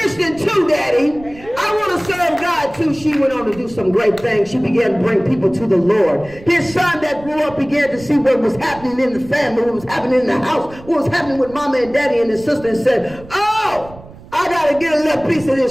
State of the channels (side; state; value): right; noise; rumble, 19 dB below the sound